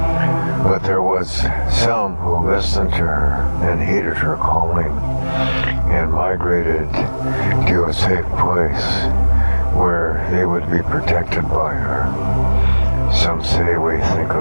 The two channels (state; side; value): inverted; both; correlation -1.00